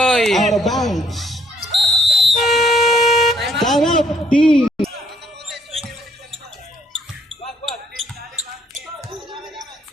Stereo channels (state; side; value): normal; both; correlation 0.66